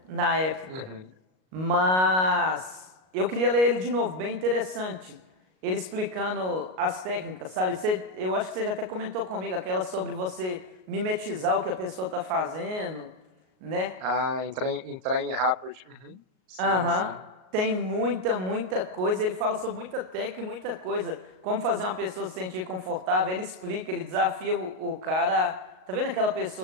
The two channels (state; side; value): late; left; 38 ms